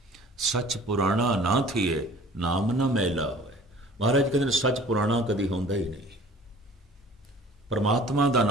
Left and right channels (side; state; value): both; normal; correlation 0.48